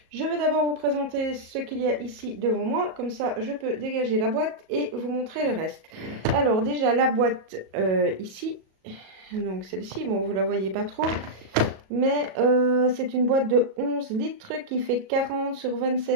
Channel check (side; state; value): left; late; 37 ms